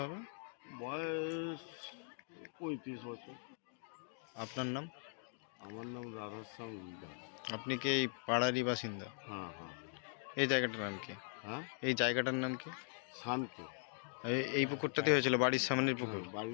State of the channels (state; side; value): silent; right; 51 dB below the other